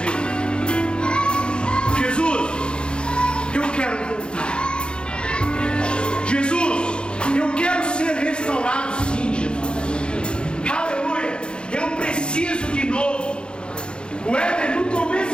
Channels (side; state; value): right; late; 0.053 ms